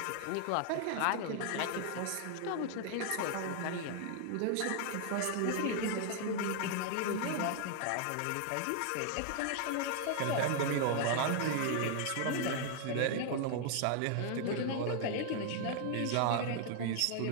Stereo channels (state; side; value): different; both; correlation 0.00